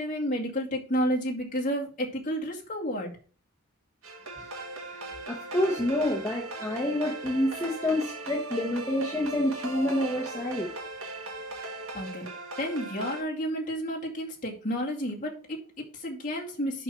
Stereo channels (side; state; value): both; normal; correlation 0.52